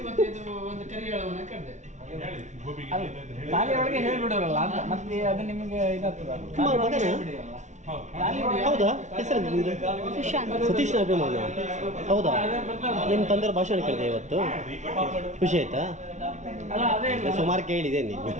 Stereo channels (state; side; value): late; left; 0.34 ms